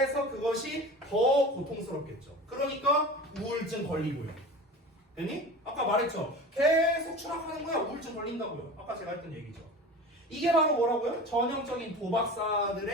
그것이 더 고통스럽겠죠. 그러니까 우울증 걸리고요. 됐니? 아까 말했죠. 계속 추락하는 거야. 우울증 걸린다고요. 아까 제가 했던 얘기죠. 이게 바로 뭐라고요? 전형적인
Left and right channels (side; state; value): both; normal; correlation 0.34